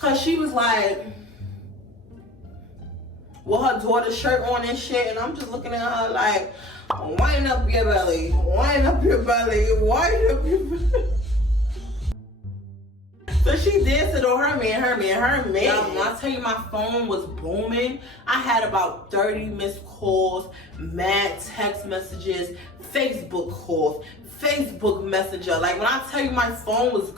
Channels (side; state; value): both; normal; correlation 0.45